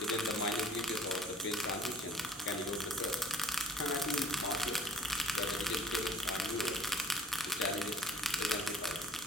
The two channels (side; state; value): both; normal; correlation 0.52